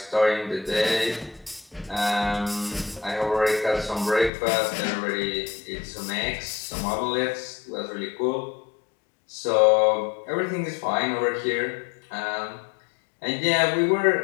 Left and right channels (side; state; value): right; drops out; at 4.3 s